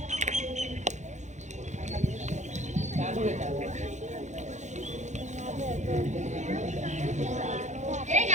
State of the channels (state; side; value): late; left; 0.34 ms